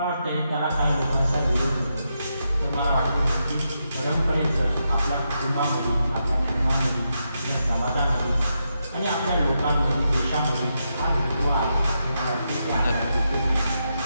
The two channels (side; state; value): both; inverted; correlation -0.84